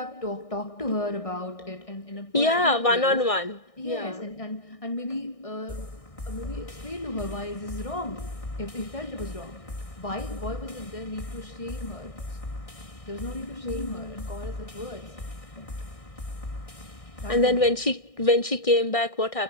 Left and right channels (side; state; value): right; late; 1.6 ms